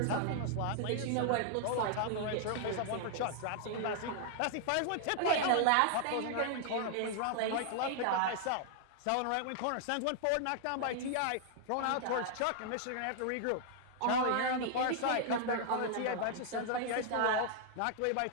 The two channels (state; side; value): different; both; correlation 0.00